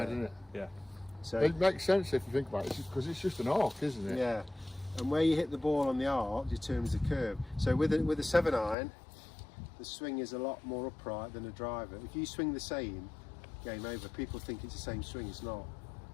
didn't it? Yeah. So it makes sense if you think about it, because it's just an arc, isn't it? Yeah. And where you hit the ball on the arc determines the curve. So with a 7-iron, the swing is a lot more upright than a driver. If you swing the same, game over. People think it's the same swing, it's not.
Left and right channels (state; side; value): drops out; right; at 8.8 s